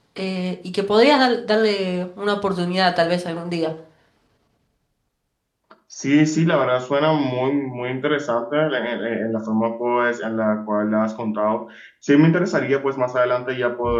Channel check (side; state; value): both; identical; correlation 1.00